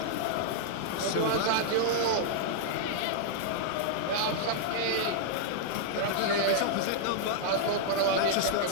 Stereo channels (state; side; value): different; both; correlation -0.01